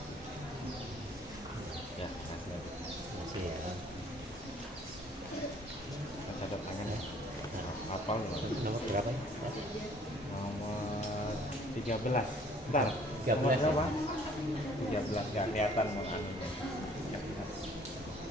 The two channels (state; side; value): normal; both; correlation 0.57